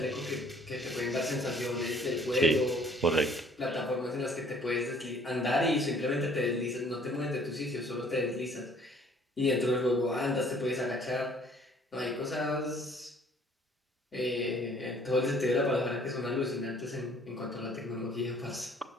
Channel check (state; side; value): normal; both; correlation 0.57